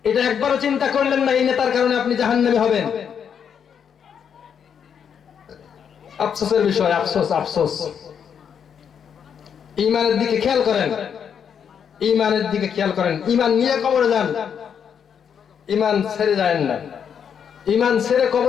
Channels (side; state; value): right; quieter; 7.7 dB